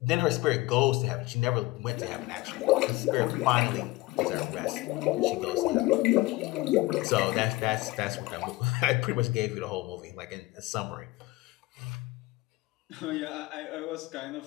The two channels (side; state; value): right; quieter; 20.6 dB